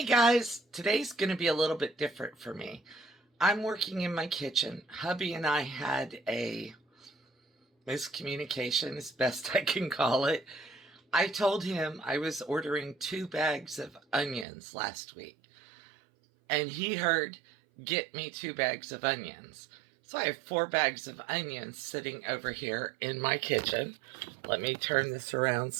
guys, today's going to be a little bit different for me. I'm working in my kitchen. Hubby and I had a miscommunication, as best I can call it. I told him I was ordering 2 bags of onions last week, and he heard, "Get me 2 bags of onions." So I have 4 bags of onions sitting over here in my kitchen. Let me turn this around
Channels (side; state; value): left; drops out; at 14.5 s